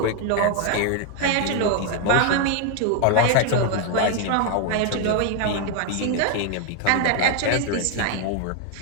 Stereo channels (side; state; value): both; different; correlation 0.00